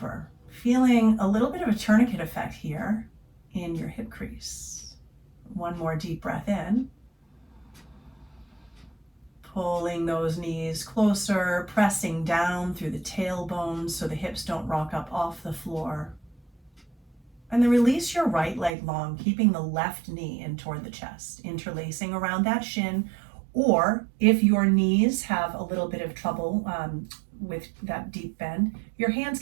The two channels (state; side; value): drops out; left; at 18.7 s